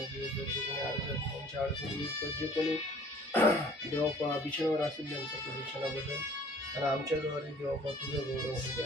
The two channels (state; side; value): normal; both; correlation 0.53